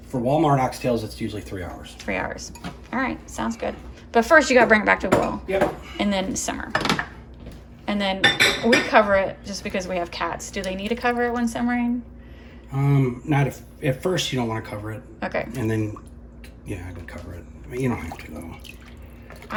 For Walmart oxtails, it's usually 3 hours. 3 hours. All right, sounds good. But first, you got to bring it back to boil. Yep. And then simmer. And then we cover it just because we have cats. Do they need to cover it when simmering? Not if at first you don't want to cover it. Okay. And then, yeah, I would cover it. I mean, you don't have to though.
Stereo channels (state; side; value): identical; both; correlation 1.00